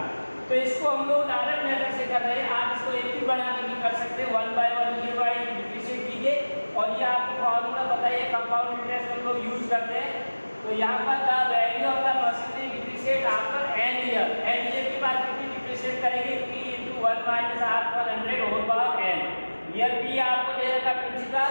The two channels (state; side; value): inverted; both; correlation -1.00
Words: तो इसको हम लोग direct method से कर रहे हैं. आप इसको एक भी बना के भी कर सकते हैं. 1 by 1 year by डिफरेंशिएट कीजिए और ये आपको फॉर्मूला बताइए. कंपाउंड इंटरेस्ट हम लोग यूज करते हैं. तो यहाँ पर the value of the machinery depreciate after n year. n year के बाद कितनी डिप्रिशिएट करेंगे. P into 1 minus R पर 100 whole power n. Year P आपको दे रखा प्रिंसिपल,